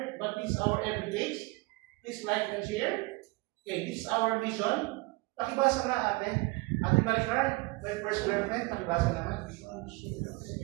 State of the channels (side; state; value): left; quieter; 24.6 dB